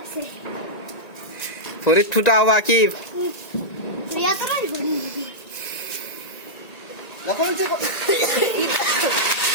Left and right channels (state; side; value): late; right; 1.9 ms